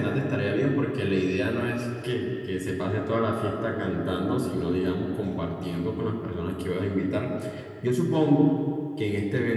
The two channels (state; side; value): identical; both; correlation 1.00